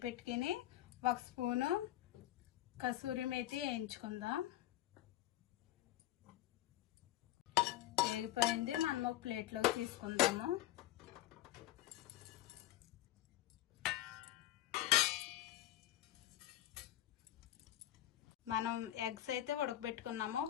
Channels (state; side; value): quieter; right; 14.5 dB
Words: పెట్టుకుని 1 స్పూను కసూరి మేతి వేయించుకుందాం. వేగిపోయింది, మనం ఒక ప్లేట్లోకి తీసుకుందాము. మనం ఎగ్స్ అయితే ఉడకబెట్టుకున్నాము,